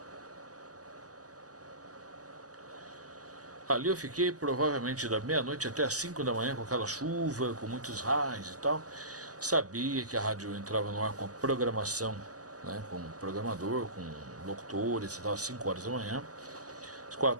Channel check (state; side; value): late; left; 0.67 ms